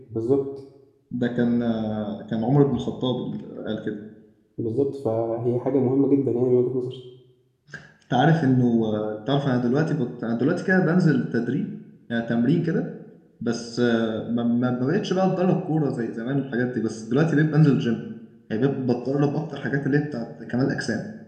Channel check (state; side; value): identical; both; correlation 1.00